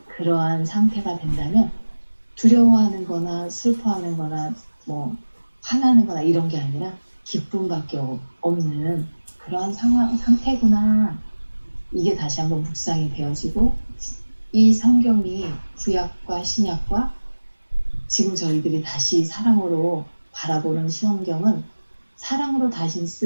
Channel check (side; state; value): both; inverted; correlation -1.00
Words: 그러한 상태가 된다면 두려워하는 거나 슬퍼하는 거나 뭐 화나는 거나 이런 게 아니라 기쁨밖에 없는 그러한 상태구나. 이게 다시 한번 묵상이 되어지고 이 성경이 구약과 신약과 지금 저희들이 다시 사랑으로 바라보는 성경은 사랑으로 다시